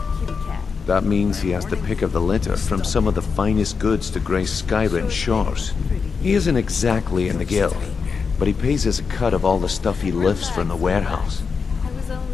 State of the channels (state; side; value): quieter; right; 5.4 dB